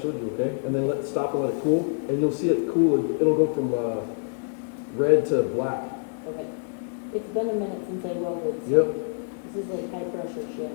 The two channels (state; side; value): silent; right; 61 dB below the other